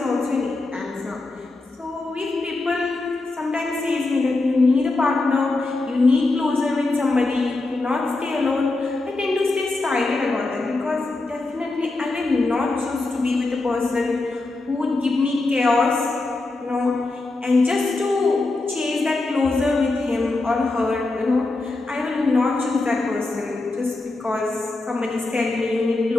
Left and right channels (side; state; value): right; quieter; 3.2 dB